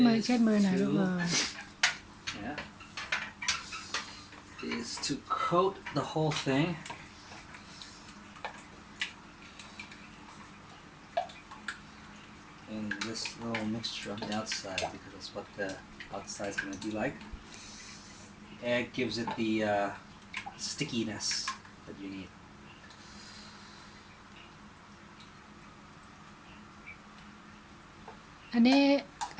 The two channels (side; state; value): both; identical; correlation 1.00